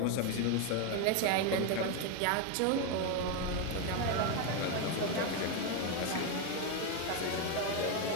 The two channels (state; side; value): different; both; correlation 0.02